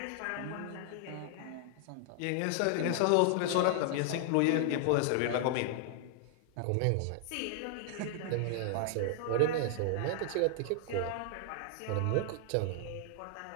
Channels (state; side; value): different; both; correlation 0.00